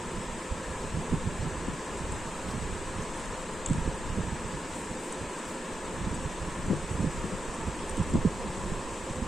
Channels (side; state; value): both; normal; correlation 0.88